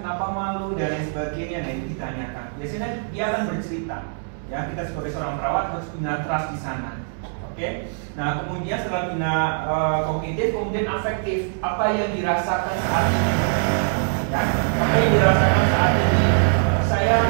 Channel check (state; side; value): silent; left; digital silence